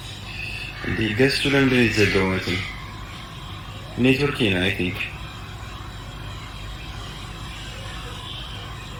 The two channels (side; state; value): both; identical; correlation 1.00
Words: እንዴ ገሱ ለምንድን ነው የተዘጋው? ማለት ነው ኔትወርክ ነው አይ ቲንክ